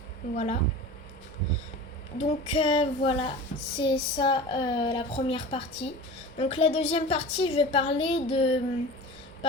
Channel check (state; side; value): noise; left; rumble, 26 dB below the sound